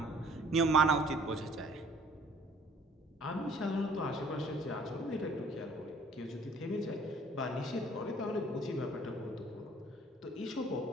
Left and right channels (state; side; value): normal; both; correlation 0.56